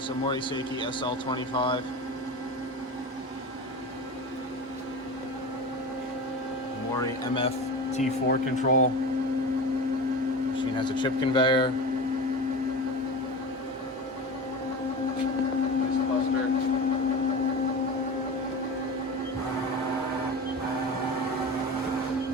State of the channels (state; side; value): normal; both; correlation 0.28